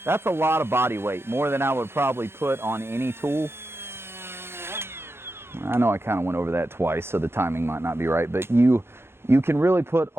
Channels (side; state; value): left; late; 0.12 ms